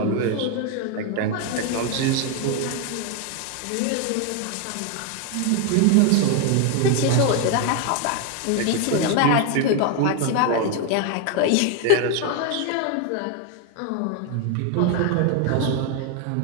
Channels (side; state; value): both; different; correlation 0.01